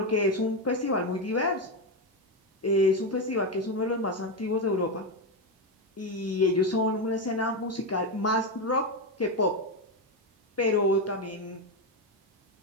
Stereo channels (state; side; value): normal; both; correlation 0.10